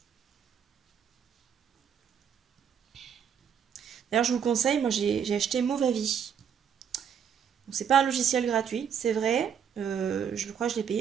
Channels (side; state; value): left; quieter; 8.0 dB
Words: D'ailleurs, je vous conseille, moi j'ai acheté Movavi. C'est pas un logiciel gratuit, c'est vrai. Je crois que je l'ai